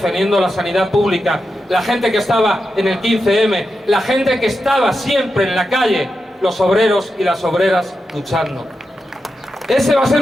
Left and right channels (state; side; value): normal; both; correlation 0.88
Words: la sanidad pública, la gente que estaba en el 15M, la gente que estaba siempre en la calle, los obreros y las obreras luchando. Ese va a